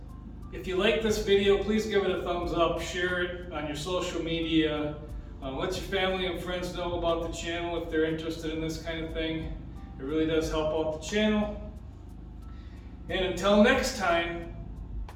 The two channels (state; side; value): identical; both; correlation 1.00